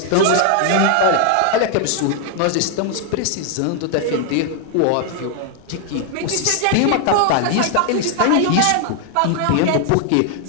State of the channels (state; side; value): different; both; correlation 0.00